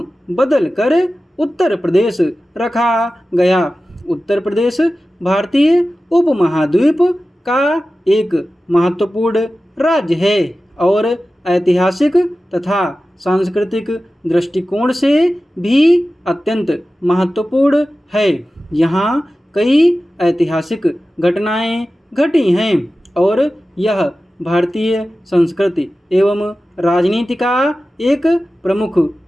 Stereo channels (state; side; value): normal; both; correlation 0.95